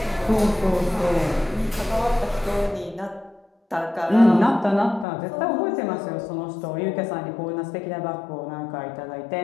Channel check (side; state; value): right; drops out; at 5.1 s